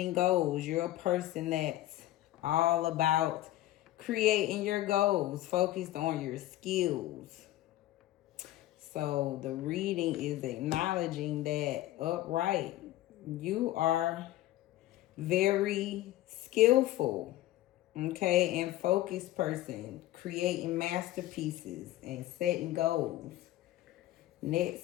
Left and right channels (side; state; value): right; quieter; 15.3 dB